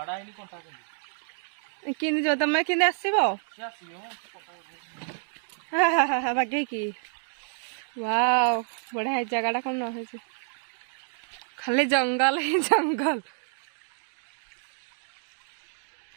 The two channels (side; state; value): left; silent; 59 dB below the other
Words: किंदी जो तमे किंदी आसीबो हा बागे की वाओ बढ़िया है जगह कौन है खाली जंगल ही जंगल